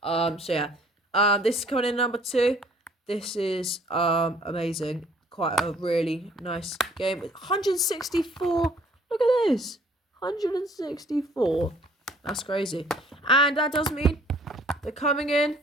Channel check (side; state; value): both; normal; correlation 0.58